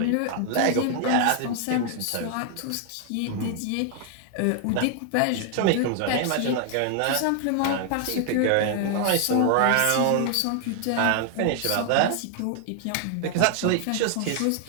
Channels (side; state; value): both; different; correlation 0.00